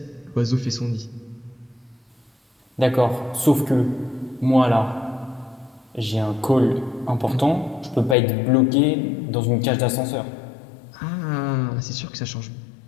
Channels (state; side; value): drops out; right; at 8.2 s